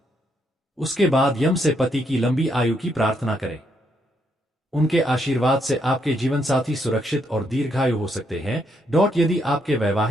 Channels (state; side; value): normal; both; correlation 0.76